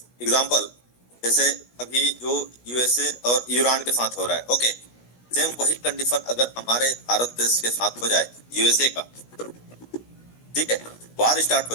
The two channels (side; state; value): right; late; 16 ms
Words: एग्जांपल, जैसे अभी जो यूएसए और ईरान के साथ हो रहा है, ओके, सेम वही कंडीशन अगर हमारे भारत देश के साथ हो जाए, यूएसए का, ठीक है, वार स्टार्ट हो